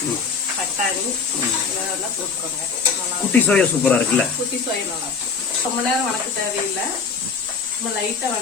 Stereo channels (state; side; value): quieter; right; 5.5 dB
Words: பட்டாணி இதெல்லாம் போட்டுக்கோங்க. குட்டி சோயா சூப்பரா இருக்குல்ல? குட்டி சோயா நல்லா இருக்கும். ரொம்ப நேரம் வணக்க தேவையில்லை. நம்ம லைட்டா